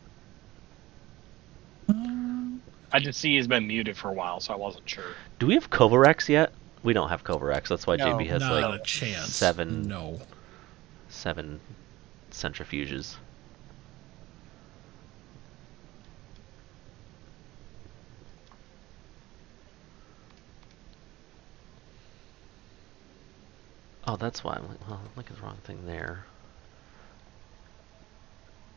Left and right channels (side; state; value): left; quieter; 18.2 dB